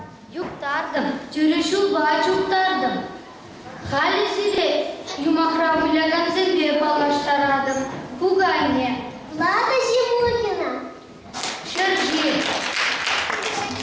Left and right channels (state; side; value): identical; both; correlation 1.00